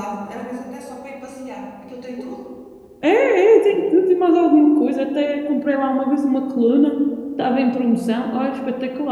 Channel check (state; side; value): identical; both; correlation 1.00